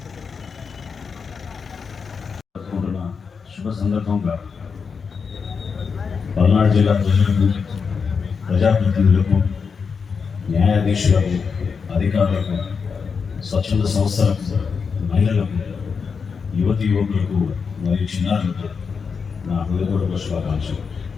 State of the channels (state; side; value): quieter; right; 5.7 dB